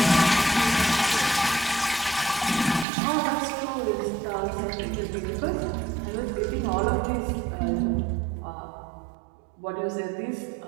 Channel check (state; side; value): drops out; left; at 2.9 s